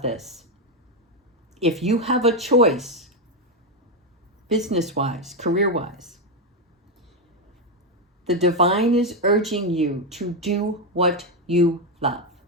this. If you have a choice, business-wise, career-wise, the divine is urging you to do what you love.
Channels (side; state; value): both; normal; correlation 0.07